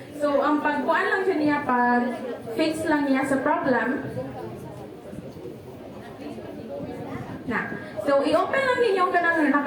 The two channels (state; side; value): identical; both; correlation 1.00